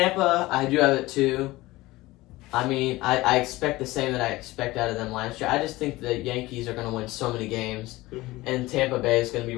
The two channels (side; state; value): right; quieter; 19.3 dB